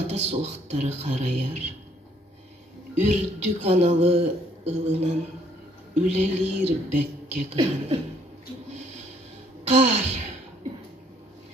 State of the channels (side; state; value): both; normal; correlation 0.65